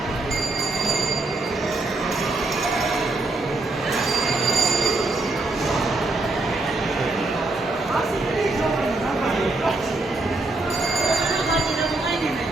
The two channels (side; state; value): left; quieter; 3.1 dB